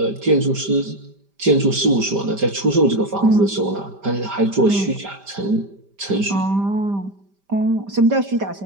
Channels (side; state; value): left; late; 5.1 ms